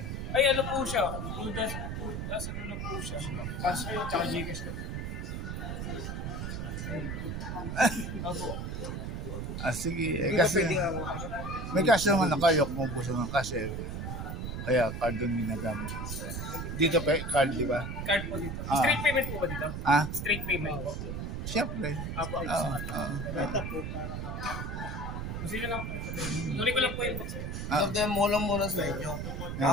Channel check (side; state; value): right; noise; rumble, 4 dB below the sound